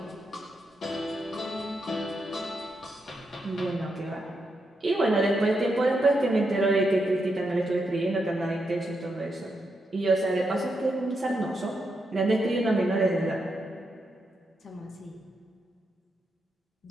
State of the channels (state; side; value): normal; both; correlation 0.83